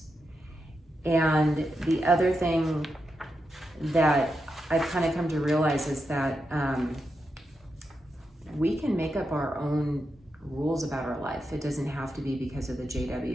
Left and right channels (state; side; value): normal; both; correlation 0.86